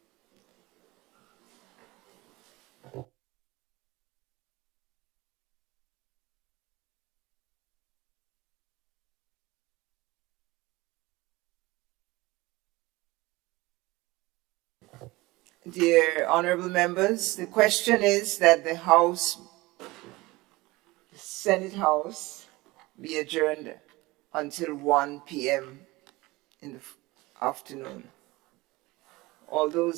Dear honorable members, the question is that the Senate House be adjourned until 1 p.m. in the afternoon. All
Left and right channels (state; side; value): quieter; left; 21.2 dB